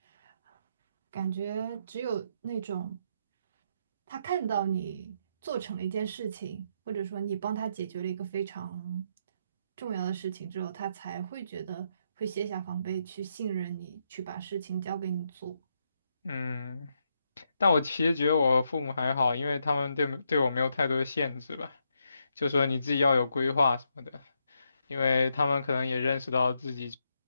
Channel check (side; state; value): both; inverted; correlation -0.79